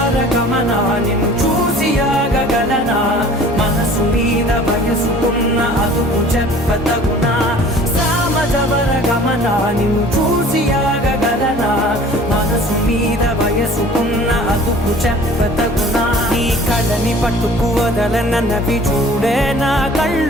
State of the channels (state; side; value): normal; both; correlation 0.47